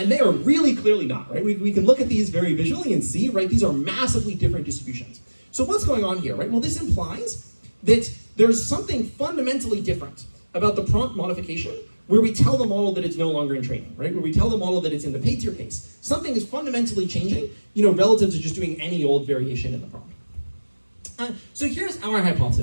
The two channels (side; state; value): both; inverted; correlation -1.00